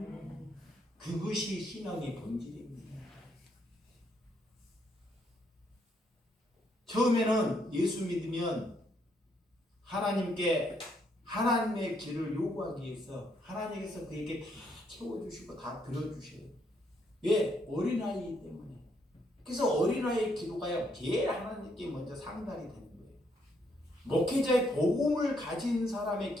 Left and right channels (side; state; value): both; normal; correlation 0.73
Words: 그것이 신앙의 본질입니다. 처음에는 예수 믿으면 하나님의 길을 요구하기 위해서 하나님께서 그에게 다 채워주시고 다 들어주셔요. 왜? 어린아이이기 때문에. 그래서 어린아이의 기도가 제일 하나님께 먼저 상달이 되는 거예요. 목회자의 복음을 가진 사람의